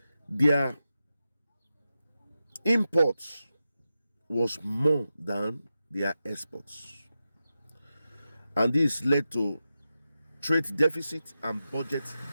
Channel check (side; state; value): both; inverted; correlation -0.90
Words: their imports was more than their exports. And this led to trade deficit and budget